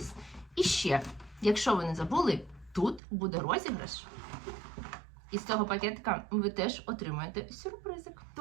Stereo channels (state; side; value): drops out; left; at 3.0 s